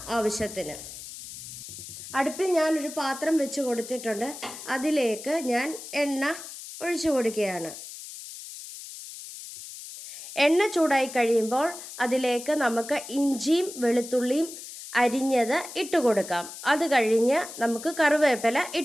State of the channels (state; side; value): noise; left; hiss, 12 dB below the sound